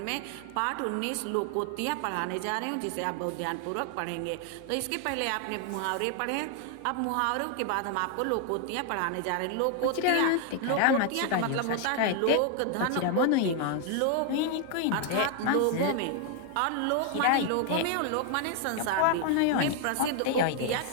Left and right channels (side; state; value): both; different; correlation 0.00